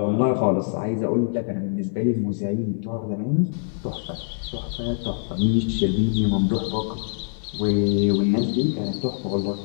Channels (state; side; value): silent; right; 63 dB below the other